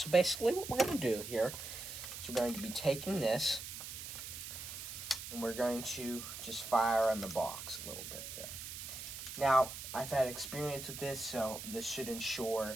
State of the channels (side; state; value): right; noise; hiss, 9 dB below the sound